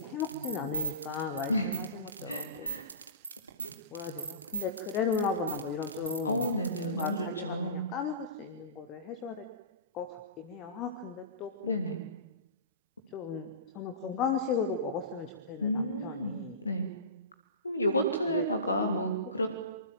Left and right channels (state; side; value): inverted; both; correlation -0.31